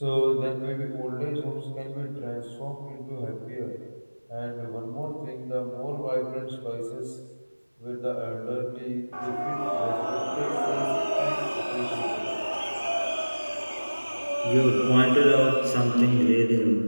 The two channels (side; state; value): both; inverted; correlation -1.00